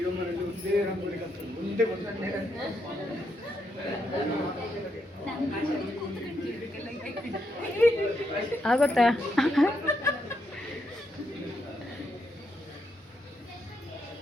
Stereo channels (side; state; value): both; normal; correlation 0.79